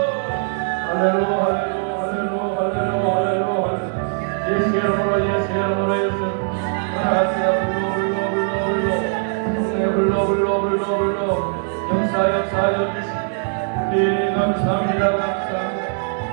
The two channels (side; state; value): left; silent; 65 dB below the other